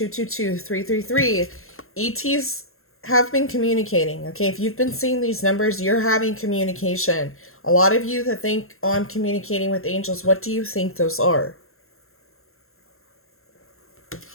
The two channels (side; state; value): right; late; 0.62 ms